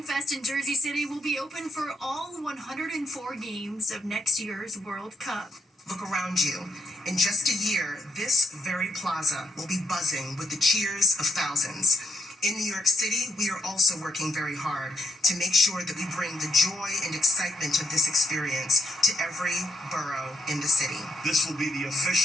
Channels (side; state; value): both; normal; correlation 0.77